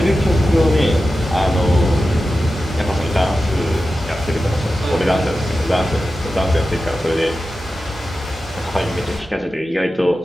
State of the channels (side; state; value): both; normal; correlation 0.93